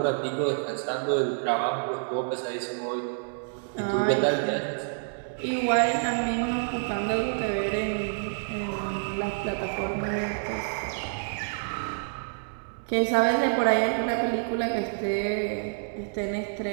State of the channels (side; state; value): left; silent; digital silence